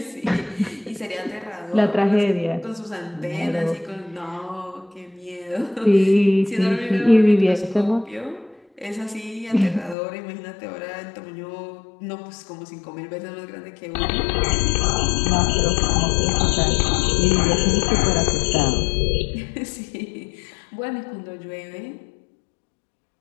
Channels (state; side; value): drops out; right; at 10.0 s